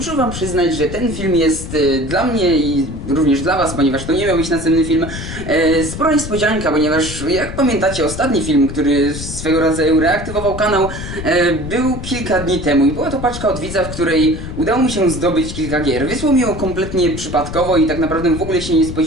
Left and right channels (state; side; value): noise; left; rumble, 8 dB below the sound